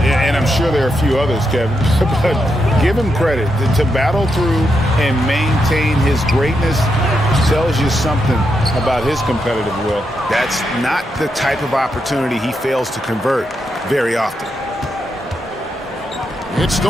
I'm sure there are a few others, Kevin. But give him credit. To battle through and maintain his greatness tells you something about his competitive will. That's not the type of opportunity he fails to convert very often. It's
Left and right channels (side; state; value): both; normal; correlation 0.83